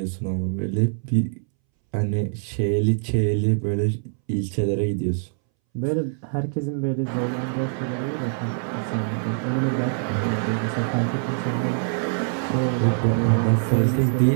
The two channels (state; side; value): silent; left; 63 dB below the other